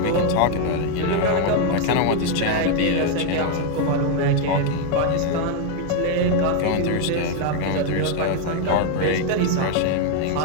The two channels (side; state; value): both; different; correlation 0.01